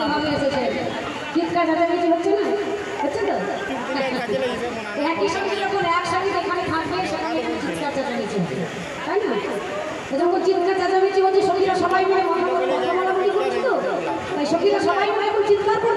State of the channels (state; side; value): identical; both; correlation 1.00